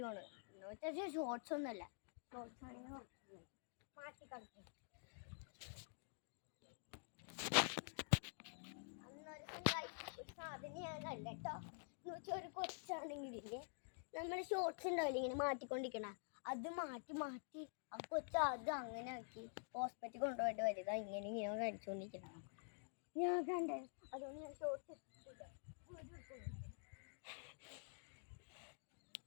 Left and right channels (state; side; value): silent; right; digital silence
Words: ആണ് എന്ന് വെച്ചാൽ ഷോർട്സ് ഒന്നുമല്ല. ഷോർട്സ് ആണെങ്കിൽ മാറ്റി കളിക്കും. സാധനം ഞാൻ കണ്ട കേട്ടോ. എന്ന് വെച്ചാൽ ഒരു കൊച്ചാണെങ്കിലില്ലേ, നമ്മൾ ഷോർട്സ് ഉണ്ടാവില്ല ഇങ്ങനെ മാറ്റിക്കൊണ്ടിരിക്കണ, അത് മാറ്റി മാറ്റി ആ കൊച്ച അത് അങ്ങനെ ആക്കി ഹോസ്പിറ്റലിൽ കൊണ്ടുപോയിട്ട് വരുക. ഇങ്ങനെ ഇങ്ങനെ കഴിച്ചുകൊണ്ടിരിക്കണം ഞാൻ കണ്ടേ. അതുകൊണ്ട് ഞാൻ ഷോർട്സ്